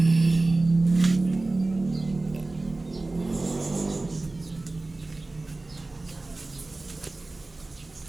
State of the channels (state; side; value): quieter; left; 3.1 dB